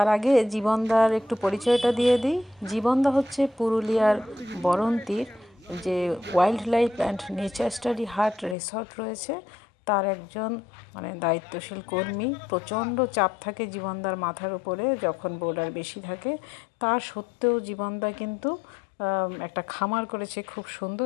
আগে জীবনদার একটু পরিচয়টা দিয়ে দিই। জীবনদা হচ্ছে পুরুলিয়ার বরন্তির যে wild life and nature study হাট রিসর্ট রয়েছে, তার একজন মানে দায়িত্বশীল কর্মী। প্রচণ্ড চাপ থাকে জীবনদার মাথার উপরে যখন বোর্ডার বেশি থাকে। তার সত্ত্বেও জীবনদা কিন্তু একটা খামার করেছে খুব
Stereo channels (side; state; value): right; drops out; at 8.6 s